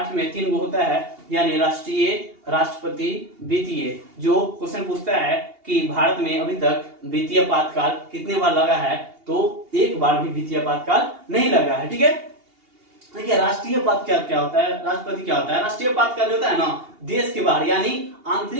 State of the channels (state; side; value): late; left; 2.8 ms